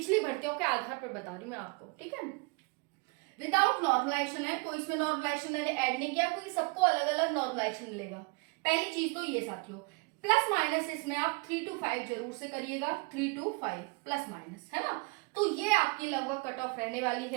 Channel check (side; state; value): left; quieter; 29.6 dB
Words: भर्तियों के आधार पर बता रही हूँ मैं आपको, ठीक है। विदाउट नॉर्मलाइजेशन है, कोई इसमें नॉर्मलाइजेशन मैंने ऐड नहीं किया, क्योंकि सबको अलग अलग नॉर्मलाइजेशन मिलेगा। पहली चीज तो ये साथियों, प्लस माइनस इसमें आप 3 to 5 जरूर से करिएगा, 3 to 5 प्लस माइनस, है ना। तो ये आपकी लगभग कट ऑफ रहने वाली